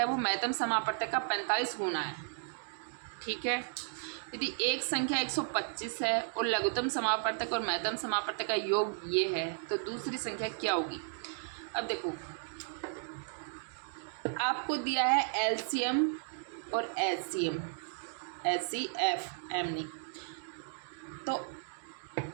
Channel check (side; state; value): left; silent; digital silence